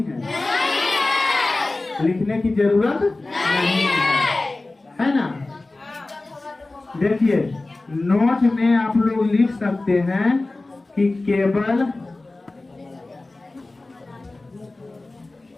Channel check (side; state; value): right; quieter; 3.1 dB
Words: है? लिखने की जरूरत नहीं है ना? देखिए नोट में आप लोग लिख सकते हैं कि केवल